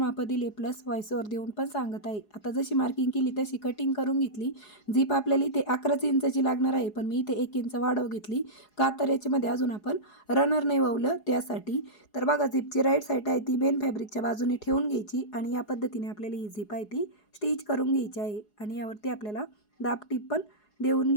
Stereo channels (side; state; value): right; late; 4.8 ms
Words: दिले, प्लस व्हॉइसवर देऊन पण सांगत आहे. आता जशी मार्किंग केली तशी कटिंग करून घेतली. झीप आपल्याला इथे 11 इंचाची लागणार आहे, पण मी इथे 1 इंच वाढव घेतली का, तर याच्यामध्ये अजून आपण रनर नाही ववलं त्यासाठी. तर बघा, झीपची राईट साईड आहे ती मेन फॅब्रिकच्या बाजूने ठेवून घ्यायची आणि या पद्धतीने आपल्याला ही झीप आहे ती स्टिच करून घ्यायची आहे आणि यावरती आपल्याला दाब टीप पण देऊन